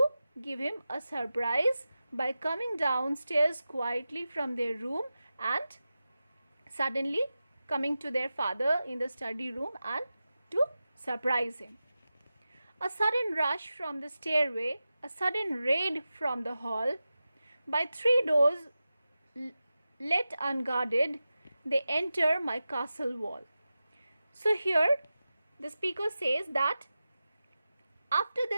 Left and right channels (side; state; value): both; inverted; correlation -0.94